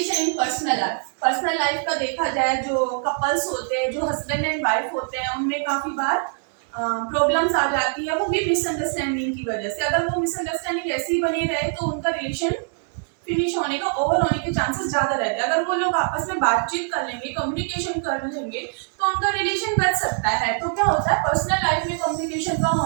in personal life. Personal life का देखा जाए, जो कपल्स होते हैं, जो हस्बैंड एंड वाइफ होते हैं, उनमें काफ़ी बार प्रॉब्लम्स आ जाती है, वो भी मिसअंडरस्टैंडिंग की वजह से। अगर वो मिसअंडरस्टैंडिंग ऐसी ही बनी रहे तो उनका रिलेशन फिनिश होने का, ओवर होने के चांसेस ज़्यादा रहते हैं। अगर वो लोग आपस में बातचीत कर लेंगे, कम्युनिकेशन कर लेंगे, तो उनका रिलेशन बच सकता है। तो क्या होता है, पर्सनल लाइफ में कम्युनिकेशन का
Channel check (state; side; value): silent; left; 56 dB below the other